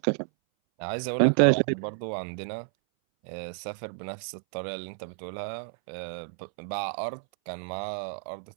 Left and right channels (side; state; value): left; silent; 58 dB below the other